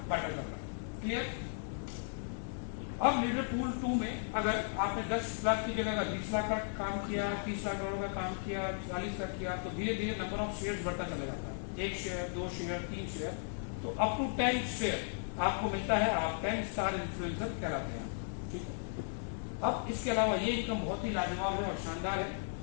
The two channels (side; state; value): right; silent; 54 dB below the other